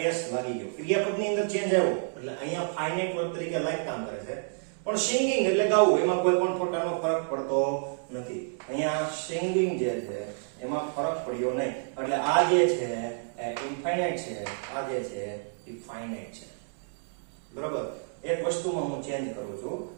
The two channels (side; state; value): left; silent; 58 dB below the other